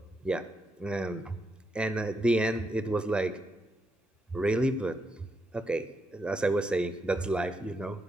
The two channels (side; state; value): both; normal; correlation 0.81